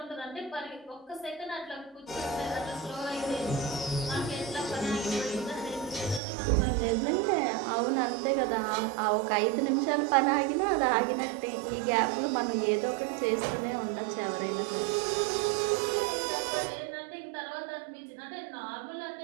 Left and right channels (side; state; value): left; drops out; at 6.2 s